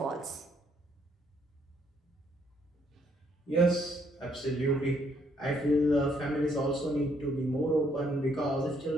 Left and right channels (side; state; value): both; normal; correlation 0.70